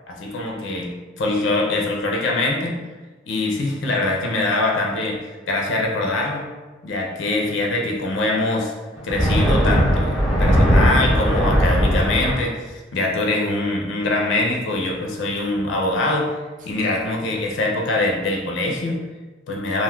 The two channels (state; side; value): normal; both; correlation 0.50